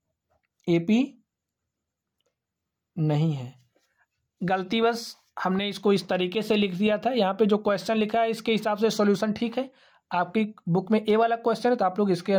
AP नहीं है। गलती बस हमने इसको इस तरीके से लिख दिया था। यहाँ पे जो क्वेश्चन लिखा है इसके हिसाब से सॉल्यूशन ठीक है। आपकी बुक में ए वाला क्वेश्चन है तो आप लोग इसके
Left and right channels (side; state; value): both; identical; correlation 1.00